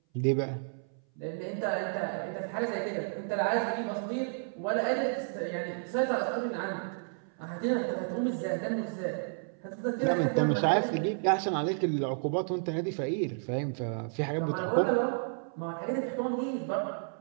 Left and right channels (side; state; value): left; silent; 57 dB below the other